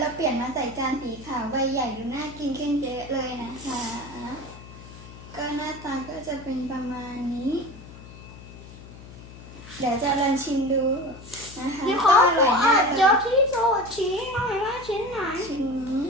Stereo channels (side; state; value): left; noise; hum, 16 dB below the sound